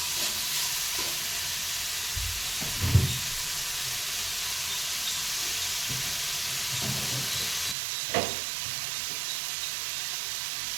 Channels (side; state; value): left; drops out; at 7.8 s